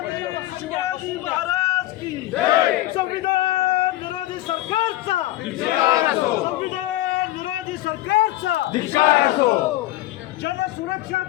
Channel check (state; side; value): quieter; right; 16.0 dB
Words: शिवाजी महाराज की संविधान विरोधी सरकारचा संविधान विरोधी सरकारचा जनसुरक्षा